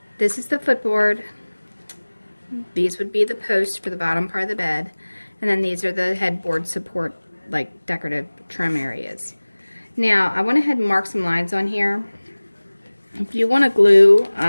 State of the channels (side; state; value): both; inverted; correlation -1.00